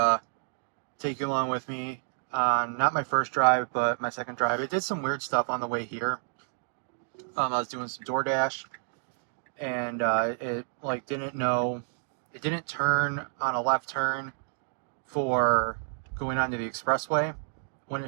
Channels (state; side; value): silent; left; digital silence